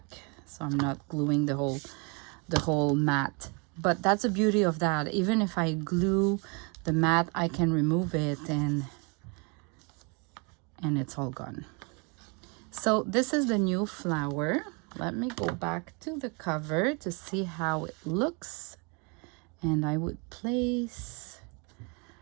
so I'm not gluing the whole mat. But that's the beauty of that. Even if I glue the mat, I can remove it and it's all gone. So this is the new flower. Let me go back to the cover to see how it looks. And I would place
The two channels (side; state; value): left; quieter; 32.7 dB